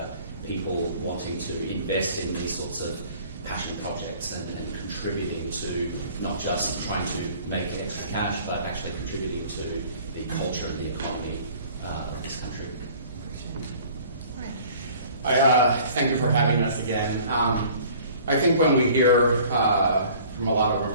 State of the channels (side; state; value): both; inverted; correlation -0.51